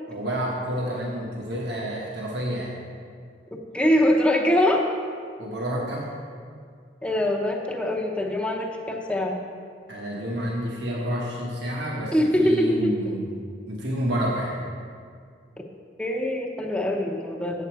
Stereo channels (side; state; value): both; normal; correlation 0.69